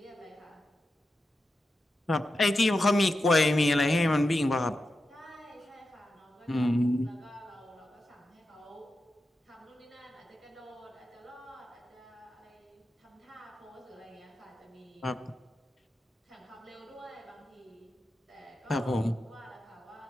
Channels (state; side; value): normal; both; correlation 0.90